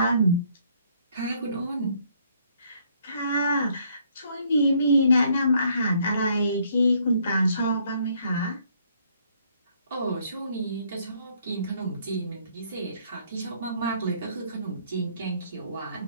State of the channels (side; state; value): both; inverted; correlation -0.65